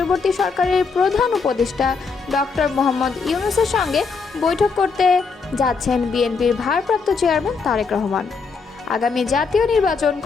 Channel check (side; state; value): right; quieter; 4.9 dB